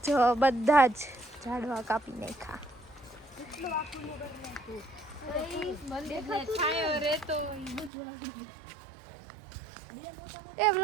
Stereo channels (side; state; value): left; drops out; at 7.9 s